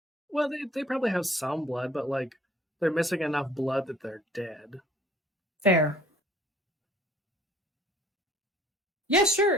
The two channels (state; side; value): normal; both; correlation 0.54